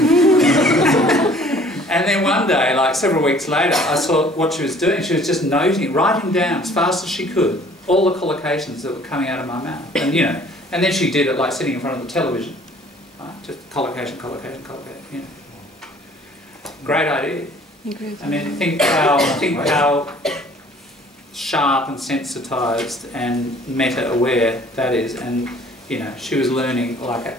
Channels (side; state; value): both; normal; correlation 0.54